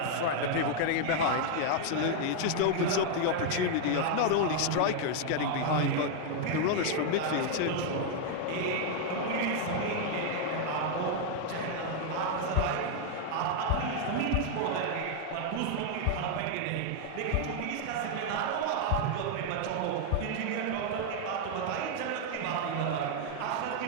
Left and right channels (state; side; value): different; both; correlation 0.00